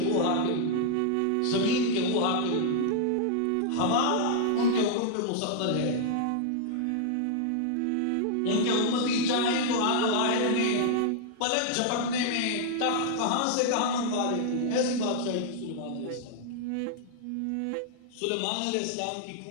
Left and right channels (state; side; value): different; both; correlation -0.01